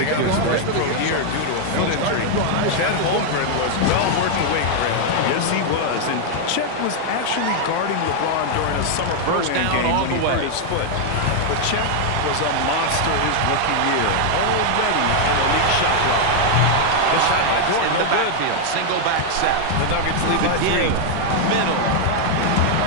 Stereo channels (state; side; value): different; both; correlation 0.00